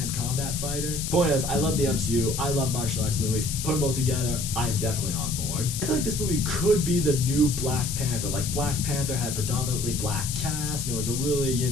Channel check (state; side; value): noise; left; hiss, 5 dB below the sound